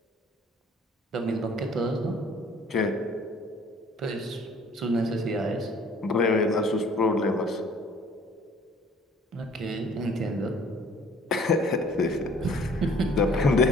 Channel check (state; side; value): normal; both; correlation 0.54